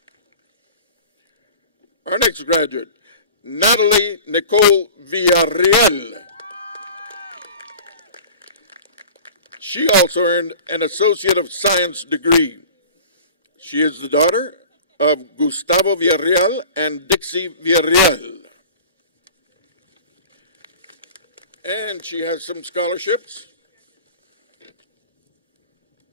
Our next graduate, Natalie Nicole Villarreal. She also earned an Associate of Science degree. She is the daughter of Gustavo Villarreal and Dixie Villarreal. And she has some scholarships.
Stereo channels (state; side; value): inverted; both; correlation -0.41